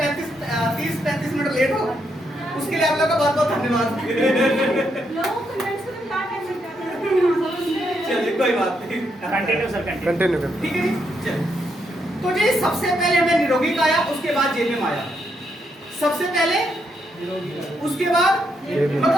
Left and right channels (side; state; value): both; normal; correlation 0.78